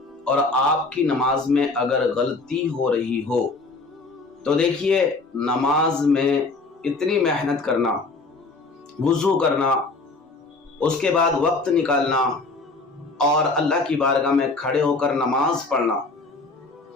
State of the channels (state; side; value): quieter; right; 3.6 dB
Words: और आपकी नमाज में अगर गलती हो रही हो तो देखिए, नमाज में इतनी मेहनत करना, वुज़ू करना, उसके बाद वक्त निकालना और अल्लाह की बारगाह में खड़े होकर नमाज पढ़ना,